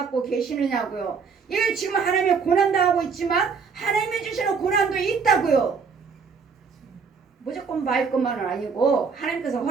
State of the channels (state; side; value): quieter; left; 5.5 dB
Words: 계시느냐고요. 이게 지금 하나님의 고난도 하고 있지만 하나님이 주시는 고난도 있다고요. 무조건 말 것만은 아니고 하나님께서